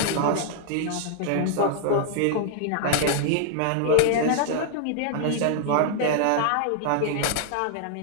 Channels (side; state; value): both; different; correlation -0.01